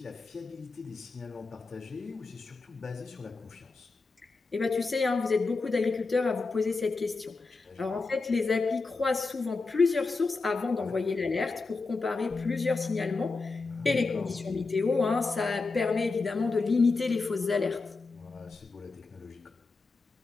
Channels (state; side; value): quieter; right; 4.0 dB